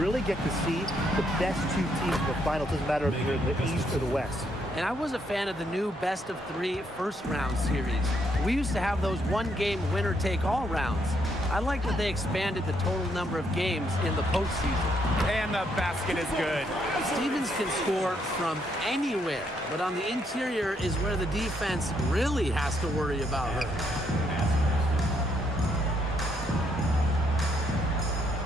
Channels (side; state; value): both; normal; correlation 0.74